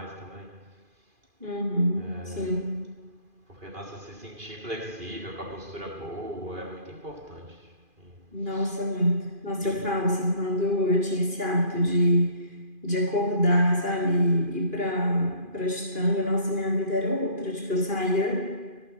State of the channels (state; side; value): late; left; 2.5 ms